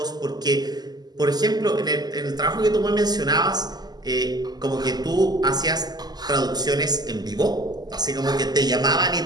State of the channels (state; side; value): late; left; 0.20 ms